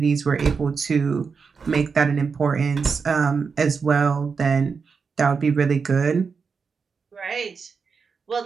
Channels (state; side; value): quieter; left; 5.4 dB